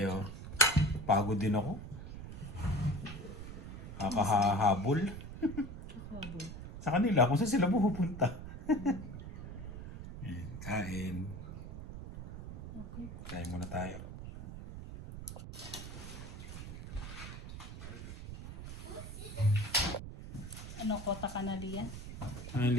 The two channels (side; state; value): right; noise; rumble, 9 dB below the sound